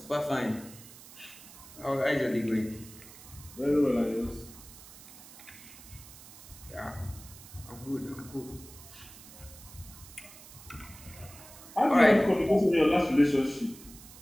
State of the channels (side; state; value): right; noise; hiss, 18 dB below the sound